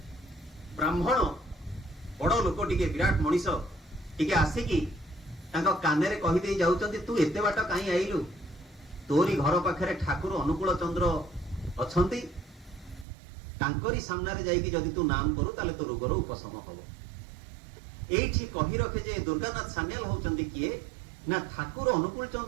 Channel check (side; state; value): left; drops out; at 13.1 s